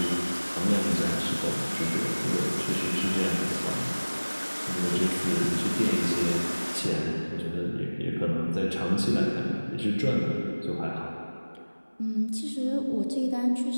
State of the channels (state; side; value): inverted; both; correlation -1.00